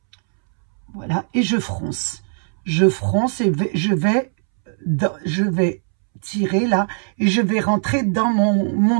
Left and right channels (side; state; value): left; silent; 66 dB below the other